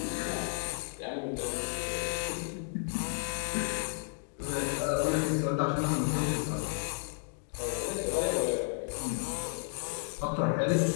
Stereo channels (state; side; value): silent; right; 56 dB below the other